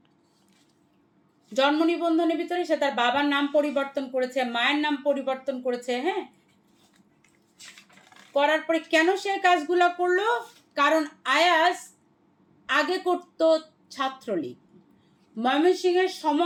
জন্ম নিবন্ধনের ভিতরে সে তার বাবার নাম পরিবর্তন করেছে, মায়ের নাম পরিবর্তন করেছে। হ্যাঁ, করার পরে কেন সে কাজগুলো করলো? কারণ আয়াস আগে করতো ছাত্রলীগ। ময়মনসিংহের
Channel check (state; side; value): identical; both; correlation 1.00